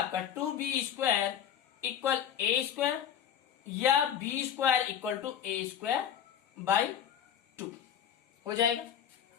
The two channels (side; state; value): right; quieter; 9.1 dB